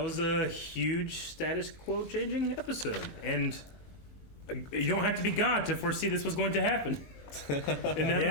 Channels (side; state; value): right; late; 22 ms